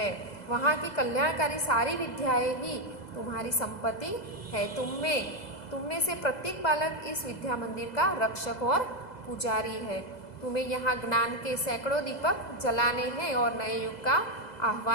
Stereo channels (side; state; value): right; late; 2.0 ms